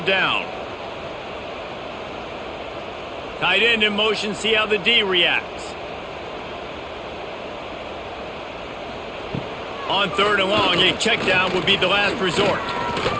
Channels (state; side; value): identical; both; correlation 1.00